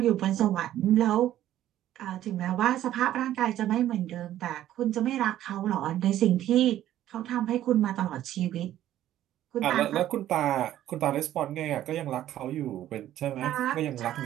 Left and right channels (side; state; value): left; quieter; 12.6 dB